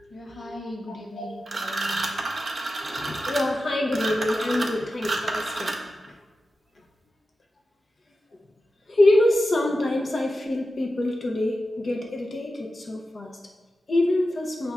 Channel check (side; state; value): both; normal; correlation 0.92